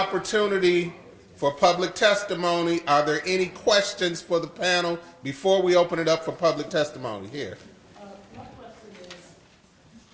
for public testimony. Are there any questions for the panel before we open it up for public testimony? Here. My question is,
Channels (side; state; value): both; identical; correlation 1.00